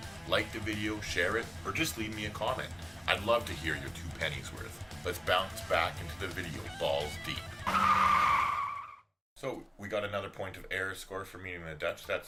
Like the video, share it, or just leave me a comment. I'd love to hear your 2 pennies worth. Let's bounce back into the video balls deep. So, we got another point of error score for meeting the Dutch.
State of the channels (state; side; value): identical; both; correlation 1.00